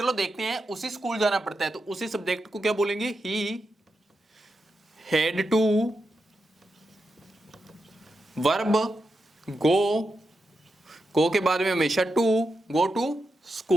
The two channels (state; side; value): normal; both; correlation 0.87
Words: देखते हैं, उसी स्कूल जाना पड़ता है तो उसी सब्जेक्ट को क्या बोलेंगे, ही हैड टू वर्ब गो के बाद में हमेशा टू, गो टू